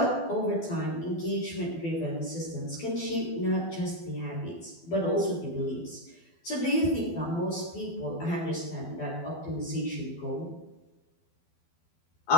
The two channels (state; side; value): late; right; 12 ms